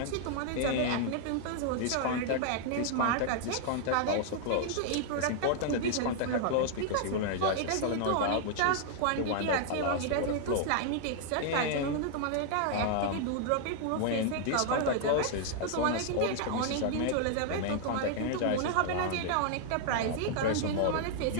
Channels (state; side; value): different; both; correlation -0.01